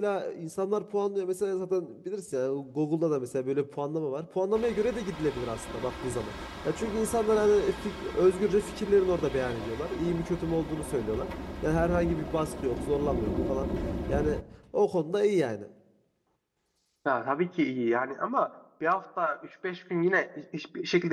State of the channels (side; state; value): both; identical; correlation 1.00